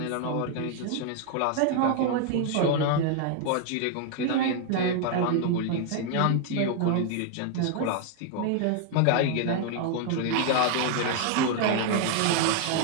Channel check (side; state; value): both; different; correlation 0.00